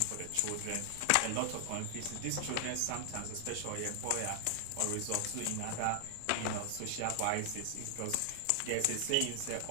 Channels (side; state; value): both; different; correlation 0.00